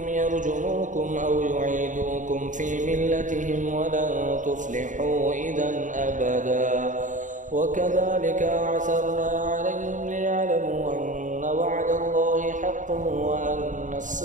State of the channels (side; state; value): left; late; 0.37 ms